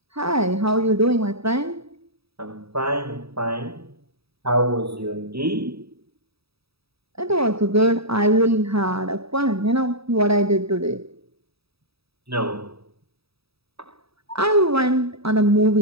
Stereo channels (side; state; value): left; late; 0.77 ms